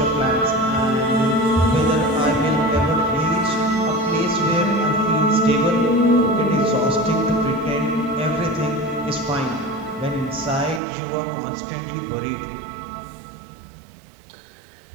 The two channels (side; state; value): left; drops out; at 10.8 s